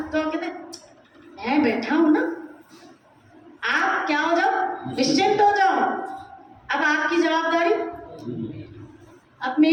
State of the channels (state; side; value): identical; both; correlation 1.00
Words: तो हम कहते हैं मैं बैठा हूं ना, आप क्या हो जाओ, निश्चिंत हो जाओ, अब आपकी जवाबदारी, अब